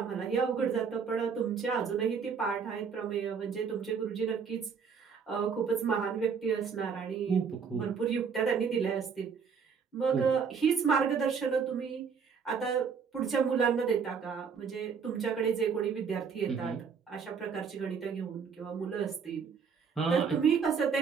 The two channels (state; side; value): quieter; left; 6.2 dB